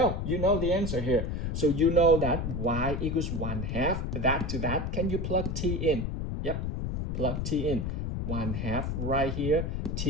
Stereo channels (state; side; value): noise; left; rumble, 2 dB below the sound